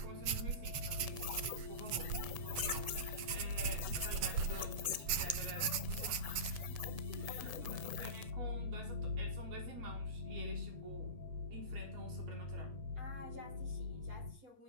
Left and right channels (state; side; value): late; left; 8.2 ms